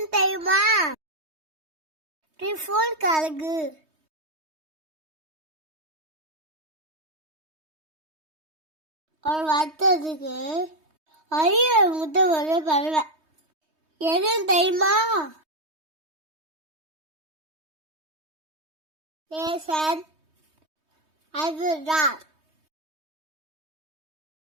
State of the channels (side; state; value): left; late; 3.2 ms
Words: தெரியுமா? டிஃபோன் கழுகு. ஒரு வருத்தத்துக்கு அரிய முட்டை ஒரு பறவை எதுன்னு தெரியுமா? அதுதான்